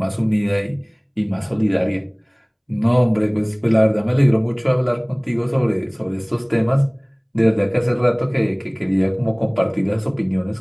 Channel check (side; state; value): both; identical; correlation 1.00